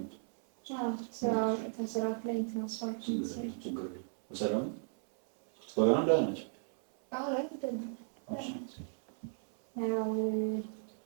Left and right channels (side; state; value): left; silent; 54 dB below the other